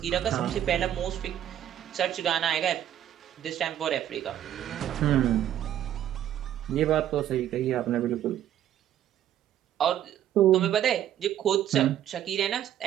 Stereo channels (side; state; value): left; quieter; 11.2 dB